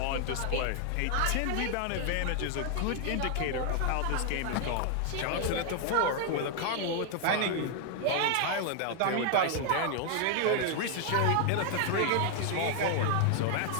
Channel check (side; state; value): both; different; correlation 0.00